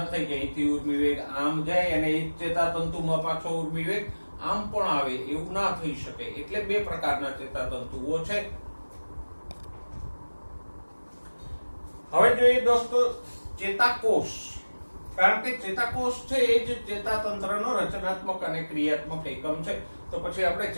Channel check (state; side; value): inverted; both; correlation -1.00